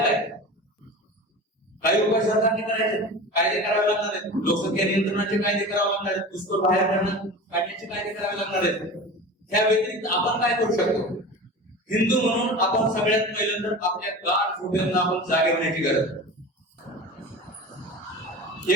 काही उपाय सरकारने करायचे, कायदे करावे लागणार आहेत. लोकसंख्या नियंत्रणाचे कायदे करावे लागणार आहेत. घुसखोर बाहेर काढण्याचे कायदे करावे लागणार आहेत. त्या व्यतिरिक्त आपण काय करू शकतो? हिंदू म्हणून आपण सगळ्यात पहिल्यांदा आपल्या गाढ झोपेंना आपण जागे होण्याची गरज आहे,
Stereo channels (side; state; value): both; normal; correlation 0.33